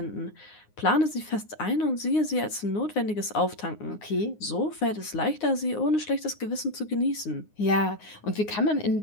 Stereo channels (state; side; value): late; right; 9.6 ms